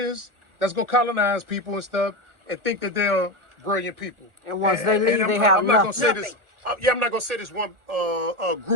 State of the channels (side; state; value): left; late; 1.4 ms